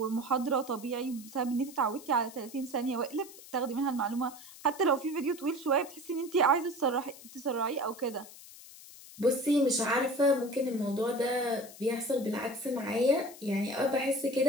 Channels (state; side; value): noise; left; hiss, 18 dB below the sound